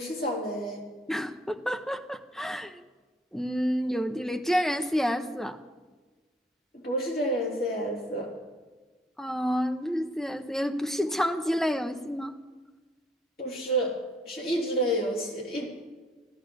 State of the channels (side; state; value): both; normal; correlation 0.65